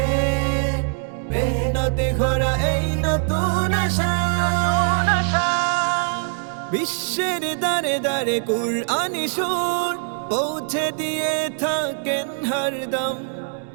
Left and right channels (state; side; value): silent; left; 61 dB below the other